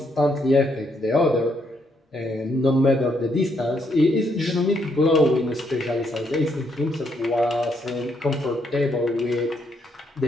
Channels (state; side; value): normal; both; correlation 0.75